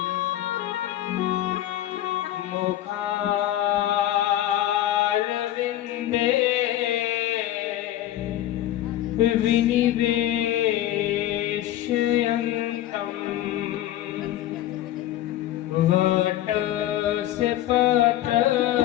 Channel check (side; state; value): right; quieter; 13.4 dB